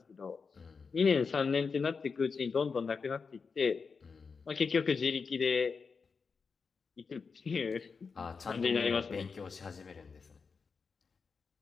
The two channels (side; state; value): right; quieter; 5.2 dB